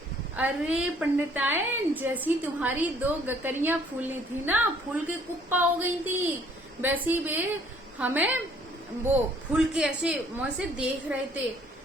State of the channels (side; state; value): both; normal; correlation 0.60